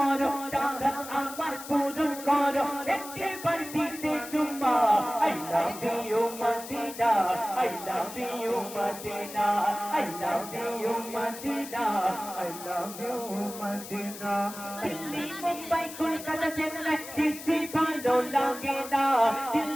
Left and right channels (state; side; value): noise; left; hiss, 12 dB below the sound